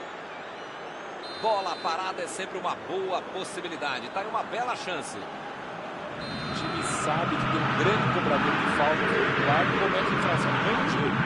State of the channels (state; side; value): identical; both; correlation 1.00